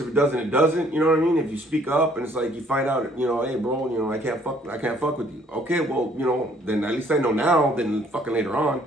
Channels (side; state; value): both; normal; correlation 0.61